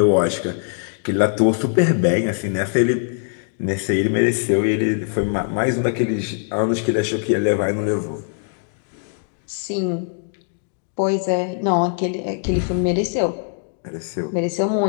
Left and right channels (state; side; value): silent; right; digital silence